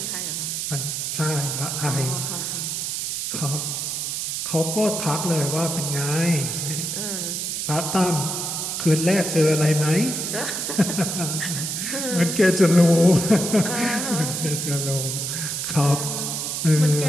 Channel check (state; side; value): noise; right; hiss, 2 dB below the sound